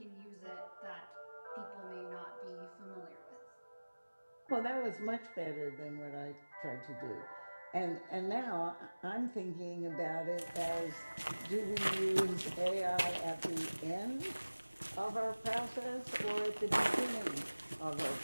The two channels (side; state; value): both; inverted; correlation -1.00